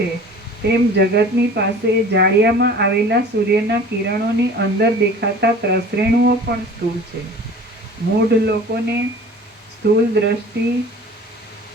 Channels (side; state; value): both; normal; correlation 0.43